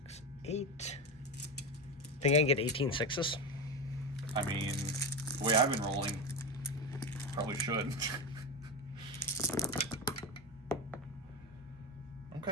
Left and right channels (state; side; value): normal; both; correlation 0.18